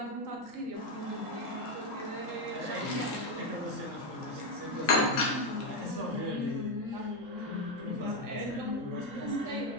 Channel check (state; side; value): late; right; 3.8 ms